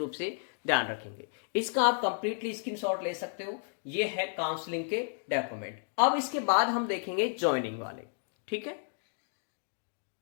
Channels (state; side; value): silent; right; digital silence